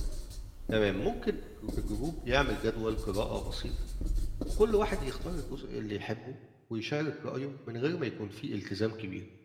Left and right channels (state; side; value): identical; both; correlation 1.00